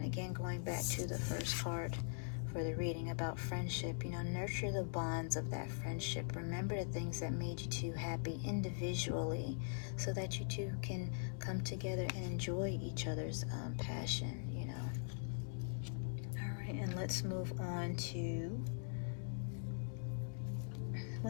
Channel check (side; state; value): right; silent; digital silence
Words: again, going back to the first card for the reading about friendship, nurture the bonds of that friendship. Remember the things that made you two happy individually so that you two can come together and enjoy each other's passion, All right, and let's move on to